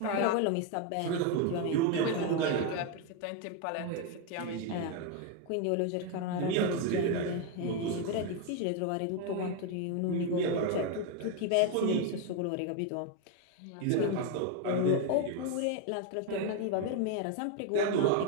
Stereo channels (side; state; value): both; different; correlation 0.01